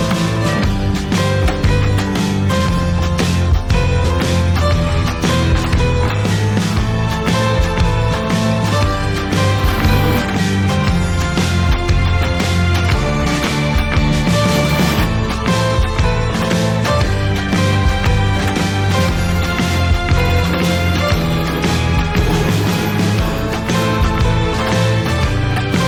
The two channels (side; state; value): both; identical; correlation 1.00